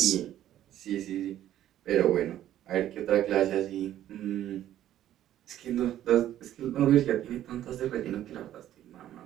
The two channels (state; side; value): quieter; left; 12.2 dB